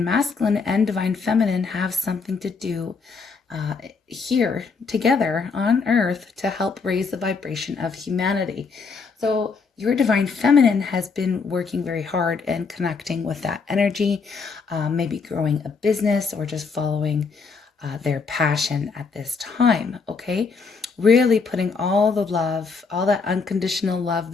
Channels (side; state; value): right; quieter; 4.9 dB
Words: Masculine and Divine Feminine have something to do here together on Earth to help raise the vibration of humanity. So your Divine Feminine has been working very hard and connecting with that energy, maybe growing a business or just following their passion at this time, okay? Really putting all the love, all that unconditional love